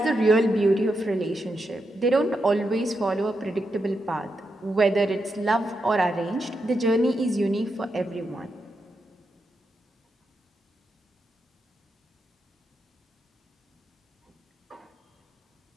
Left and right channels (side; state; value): both; normal; correlation 0.85